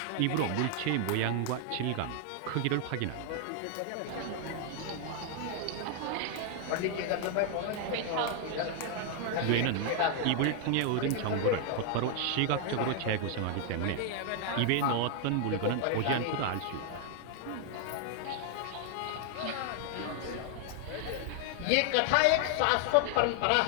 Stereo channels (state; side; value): different; both; correlation 0.00